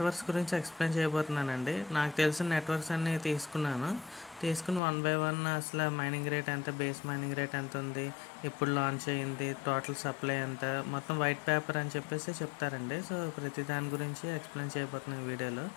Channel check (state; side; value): drops out; right; at 4.8 s